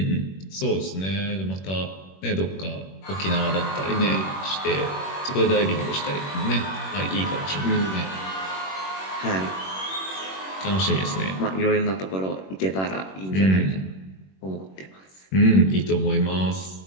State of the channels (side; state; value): right; late; 21 ms